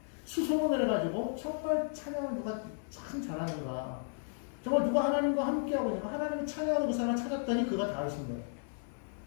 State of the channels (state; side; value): silent; right; 55 dB below the other